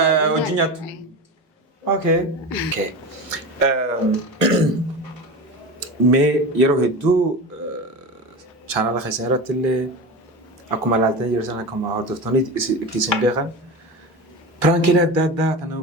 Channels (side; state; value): both; normal; correlation 0.26